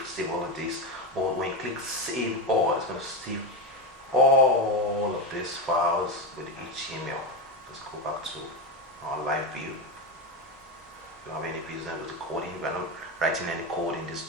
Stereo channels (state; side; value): normal; both; correlation 0.15